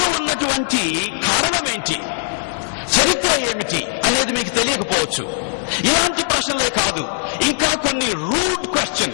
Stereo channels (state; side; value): silent; right; digital silence